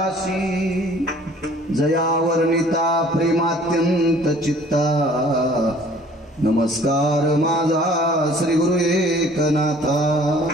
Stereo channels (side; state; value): both; normal; correlation 0.53